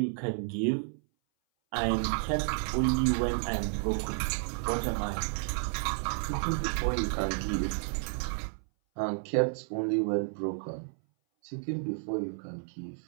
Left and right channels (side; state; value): left; silent; 57 dB below the other